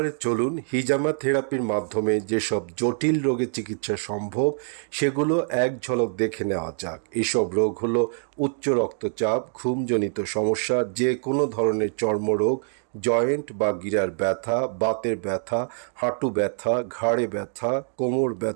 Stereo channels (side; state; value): left; silent; digital silence